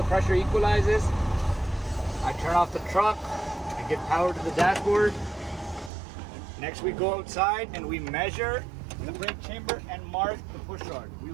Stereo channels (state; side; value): drops out; left; at 5.9 s